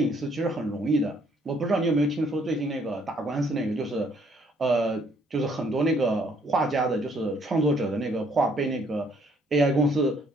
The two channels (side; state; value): both; normal; correlation 0.65